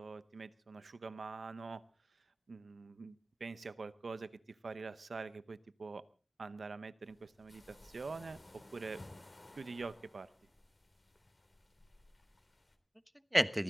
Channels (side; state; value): both; normal; correlation 0.98